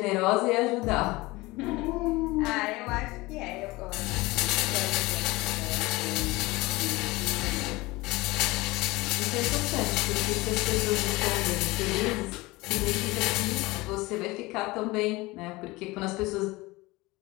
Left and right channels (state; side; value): quieter; right; 21.5 dB